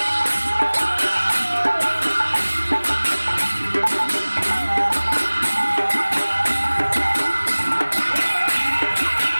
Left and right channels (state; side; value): inverted; both; correlation -1.00